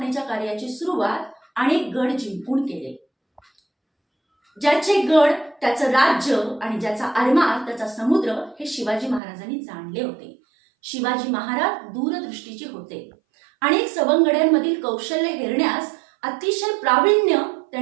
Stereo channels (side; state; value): left; drops out; at 9.2 s